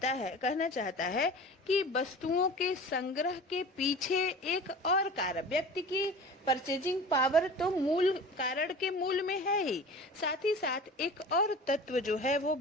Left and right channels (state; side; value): normal; both; correlation 0.38